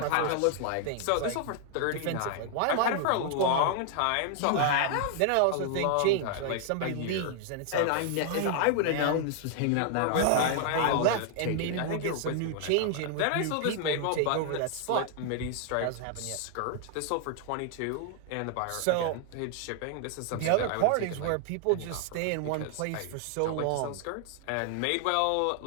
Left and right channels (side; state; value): both; different; correlation 0.00